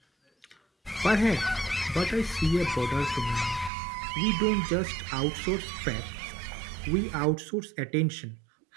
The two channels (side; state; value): left; drops out; at 3.7 s